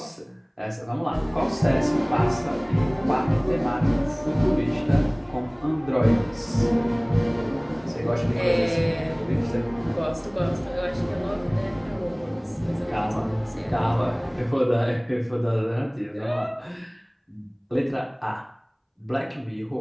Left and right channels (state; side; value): identical; both; correlation 1.00